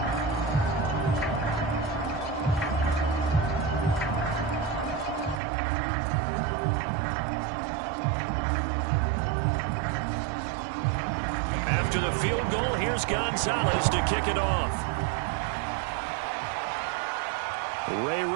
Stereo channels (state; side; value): drops out; left; at 5.4 s